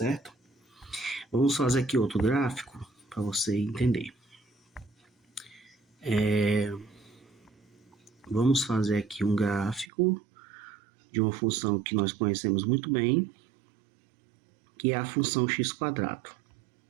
Vamos fazer aqui outro gráfico para você entender. Vamos fazer aqui um gráfico de uma função que nós conhecemos muito bem, que é a função x².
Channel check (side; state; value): left; drops out; at 9.9 s